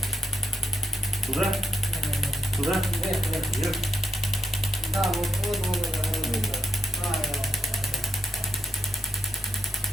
Туда? Туда? Вверх? Да, вот.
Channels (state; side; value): normal; both; correlation 0.79